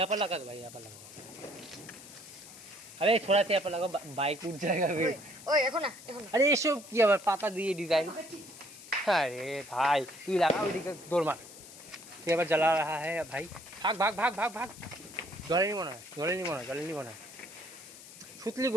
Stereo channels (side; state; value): left; noise; hiss, 17 dB below the sound